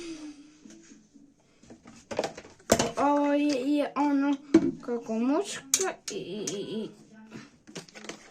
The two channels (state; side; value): identical; both; correlation 1.00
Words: Ovo je ono kako muška i